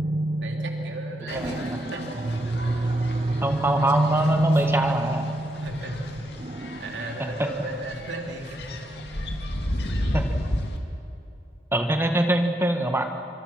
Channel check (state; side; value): normal; both; correlation 0.80